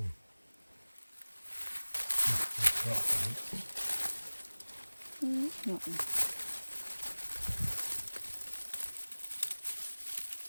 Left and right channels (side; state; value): both; inverted; correlation -1.00